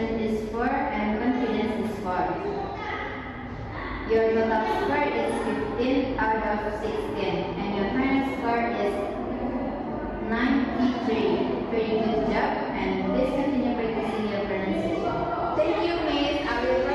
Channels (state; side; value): identical; both; correlation 1.00